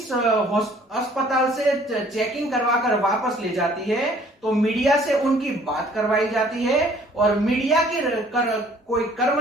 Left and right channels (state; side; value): normal; both; correlation 0.57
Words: अस्पताल से चेकिंग करवाकर वापस ले जाती है तो मीडिया से उनकी बात करवाई जाती है, और मीडिया के कोई